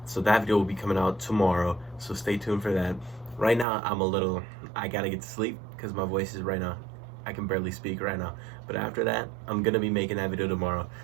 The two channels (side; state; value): left; drops out; at 3.7 s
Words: So that video will be coming out tomorrow, so stay tuned for that. Right now, I gotta get to sleep because my voice is right now. I can barely speak right now. But after that, I'm gonna be making that video tomorrow.